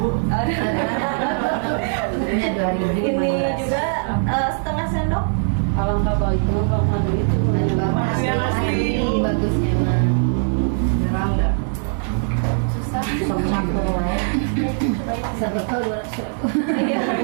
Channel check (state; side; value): silent; left; 65 dB below the other